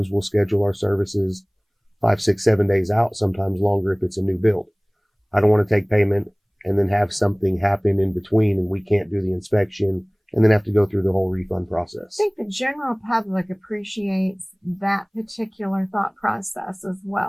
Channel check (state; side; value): identical; both; correlation 1.00